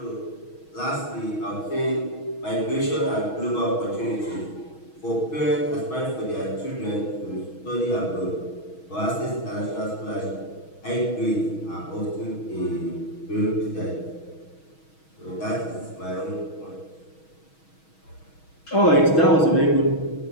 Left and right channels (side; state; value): right; late; 6.3 ms